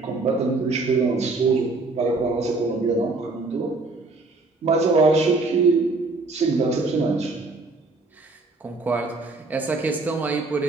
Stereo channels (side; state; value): left; quieter; 3.4 dB